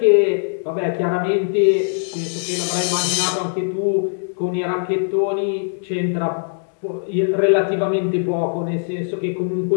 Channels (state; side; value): silent; right; digital silence